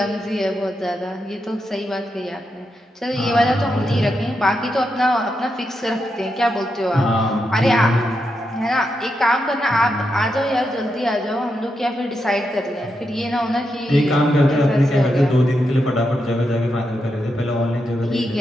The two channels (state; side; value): normal; both; correlation 0.85